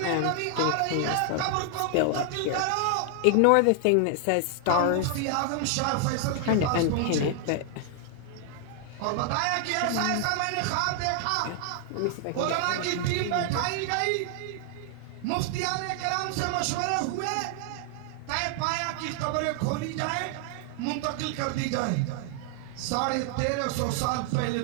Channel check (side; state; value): both; different; correlation 0.00